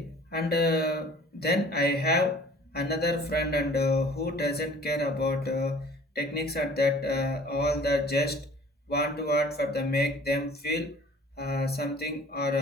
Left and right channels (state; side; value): normal; both; correlation 0.50